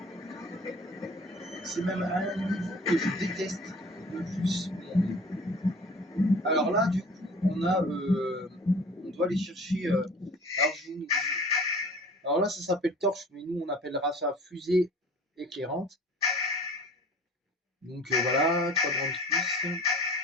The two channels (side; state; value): both; normal; correlation 0.45